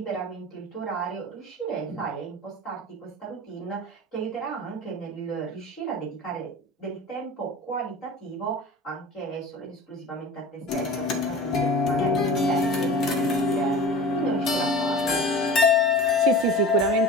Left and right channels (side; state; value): both; normal; correlation 0.36